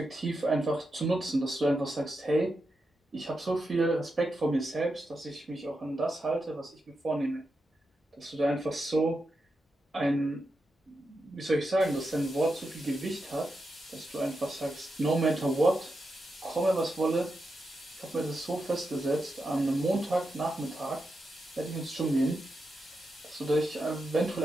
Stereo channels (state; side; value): normal; both; correlation 0.87